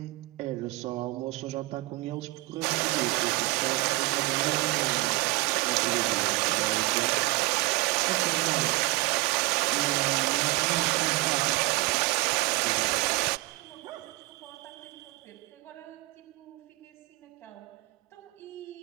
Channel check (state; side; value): quieter; left; 22.8 dB